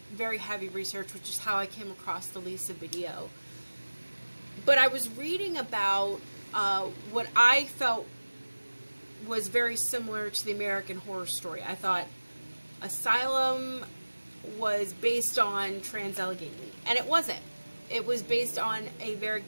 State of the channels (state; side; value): inverted; both; correlation -1.00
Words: very heavy research, which is how I came across the Lisa video. But I was reading about what I felt was very similar to the American Horror Story. I thought Asylum was based on Allegheny, and it wasn't. It was based on a very